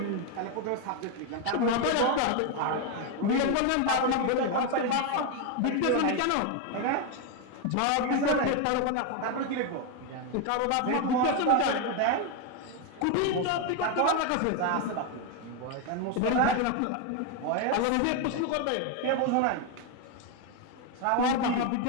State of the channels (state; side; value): different; both; correlation 0.01